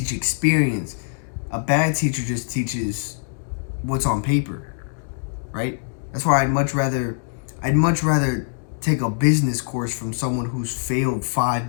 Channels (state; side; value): silent; right; digital silence